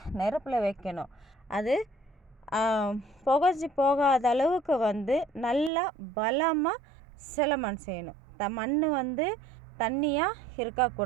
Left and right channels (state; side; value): drops out; left; at 5.7 s